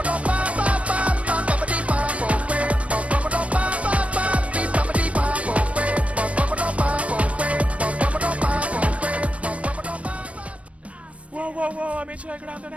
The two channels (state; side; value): late; left; 0.064 ms